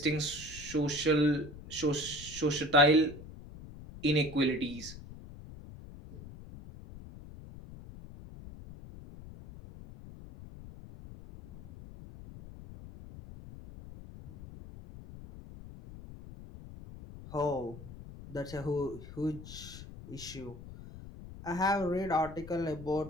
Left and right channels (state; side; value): noise; left; rumble, 15 dB below the sound